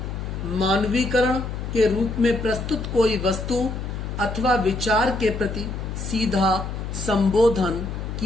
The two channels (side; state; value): left; noise; hum, 6 dB below the sound